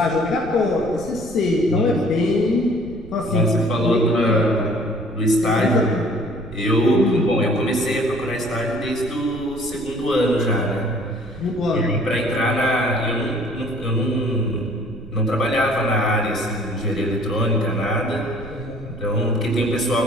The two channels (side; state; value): right; noise; rumble, 18 dB below the sound